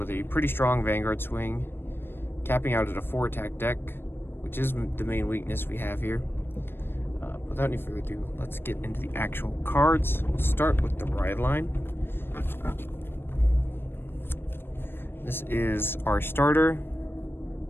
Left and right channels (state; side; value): late; right; 0.10 ms